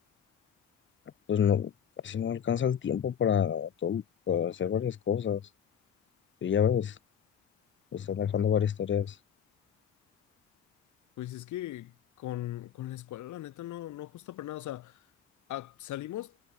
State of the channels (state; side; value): quieter; right; 8.5 dB